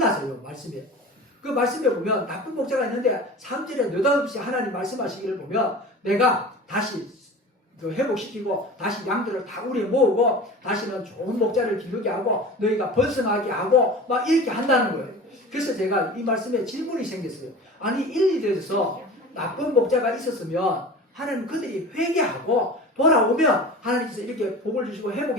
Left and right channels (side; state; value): both; normal; correlation 0.36